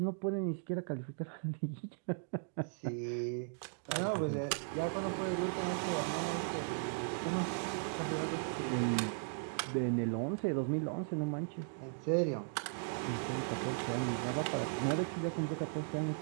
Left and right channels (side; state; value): left; silent; digital silence